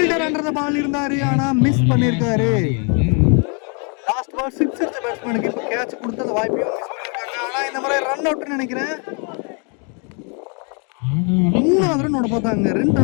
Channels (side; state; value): right; quieter; 37.2 dB